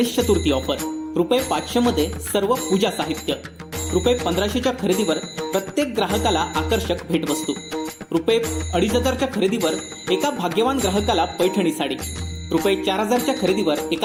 चतुर्थी ऑफर ₹500 मध्ये सर्व पूजा साहित्य, ₹1500च्या खरेदीवर प्रत्येक ग्राहकाला आकर्षक भेटवस्तू, ₹2500च्या खरेदीवर एका भाग्यवान ग्राहकाला पैठणी साडी, ₹4000च्या खरेदीवर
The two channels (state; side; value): identical; both; correlation 1.00